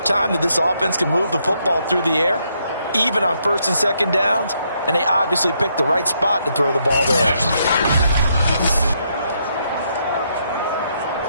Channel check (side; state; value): both; inverted; correlation -0.76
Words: time that this offense can move the football through the air, even on 1st and 2nd downs, and they obviously picked the right spot to throw the ball there.